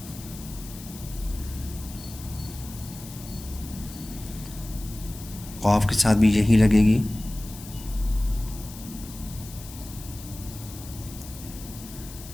क़ाफ के साथ भी यही लगेगी।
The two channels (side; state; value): left; noise; hiss, 15 dB below the sound